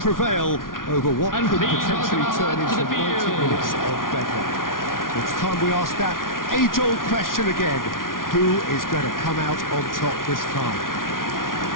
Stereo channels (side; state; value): right; late; 0.90 ms